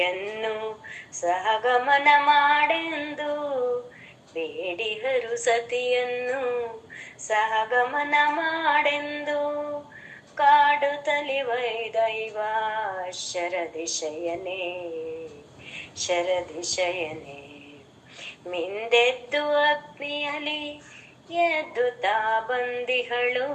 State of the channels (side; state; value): both; identical; correlation 1.00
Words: ಸಹಗಮನ ಮಾಡೆಂದು, ಬೇಡಿಹರು ಸತಿಯನ್ನು ಸಹಗಮನ ಮಾಡೆಂದು. ಕಾಡುತ್ತಲಿ ವೈದೈವ ಶರದಿಶಯನೆ ಶರದಿಶಯನೆ. ಮಿಂದೆದ್ದು ಅಗ್ನಿಯಲಿ ಎದ್ದು ತಾ ಬಂದಿಹಳು,